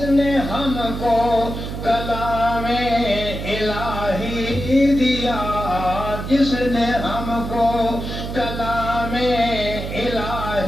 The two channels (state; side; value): noise; right; hum, 6 dB below the sound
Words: نے ہم کو کلام الہی دیا جس نے ہم کو کلام